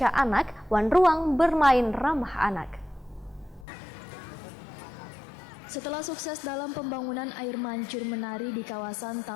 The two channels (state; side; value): drops out; right; at 3.7 s